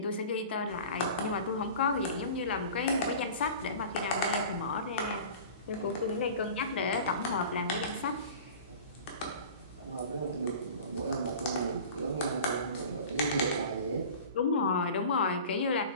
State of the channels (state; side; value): inverted; both; correlation -0.39